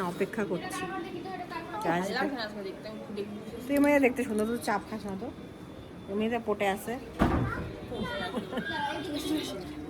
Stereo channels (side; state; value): both; identical; correlation 1.00